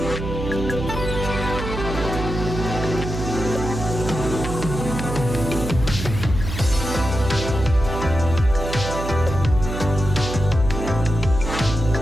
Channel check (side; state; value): right; noise; hum, 6 dB below the sound